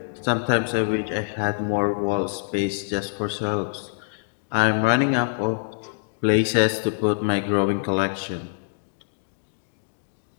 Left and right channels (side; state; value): right; silent; digital silence